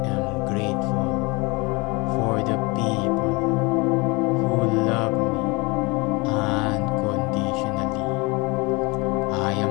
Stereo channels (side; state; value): right; quieter; 26.5 dB